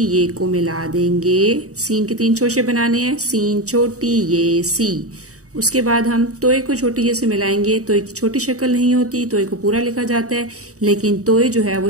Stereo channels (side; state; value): left; late; 0.66 ms